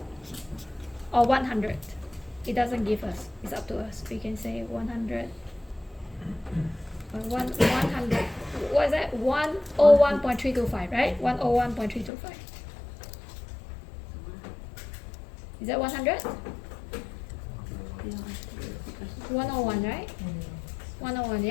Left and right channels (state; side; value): drops out; right; at 12.1 s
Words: or 100. It doesn't give us. It's up to us. We can say 100. 100. What is that? 101.325, right? 101.325. Is that 100? 101, right? 101,